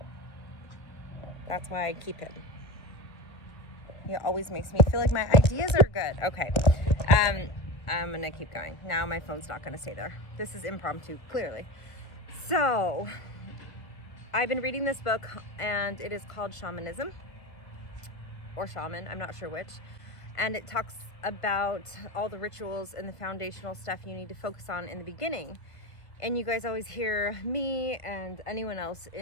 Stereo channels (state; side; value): late; right; 1.0 ms